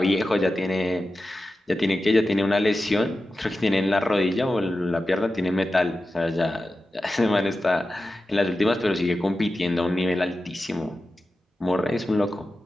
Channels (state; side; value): normal; both; correlation 0.93